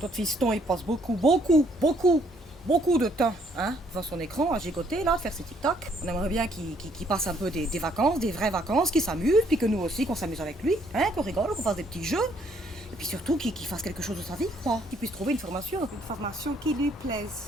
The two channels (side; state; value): both; normal; correlation 0.67